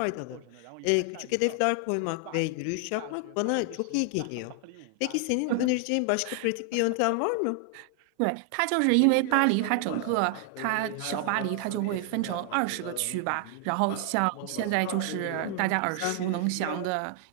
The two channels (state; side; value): different; both; correlation 0.00